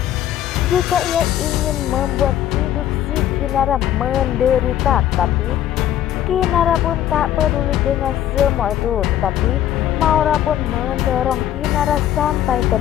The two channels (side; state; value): right; quieter; 11.6 dB